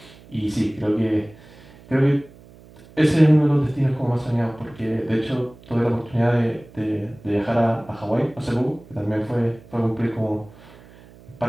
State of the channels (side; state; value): right; noise; hum, 23 dB below the sound